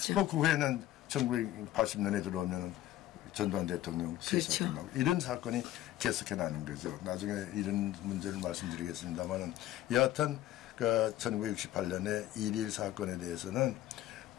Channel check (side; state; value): right; quieter; 14.0 dB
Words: 그 후에는 1980년에 들어오면 전두환 대통령 시사건 나오고 이런 사건이 계속해 나는 거죠. 나중에 이런 문제를 말씀드리겠습니다만은 여하튼 1968년에 1.1 사건에 대해서는